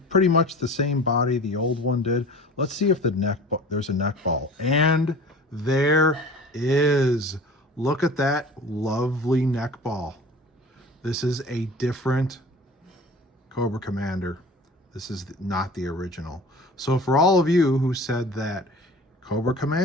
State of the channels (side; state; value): both; normal; correlation 0.40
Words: pretty much the same body the old one did. Let's see if there's a neck ball, and there is. Look at that lovely neck ball. This is a different Cobra Commander. This is not the original. So for all of you who said that Cobra